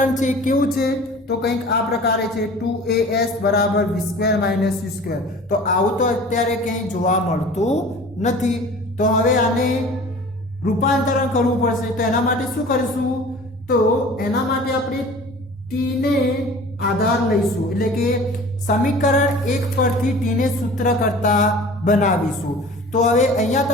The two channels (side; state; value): both; normal; correlation 0.43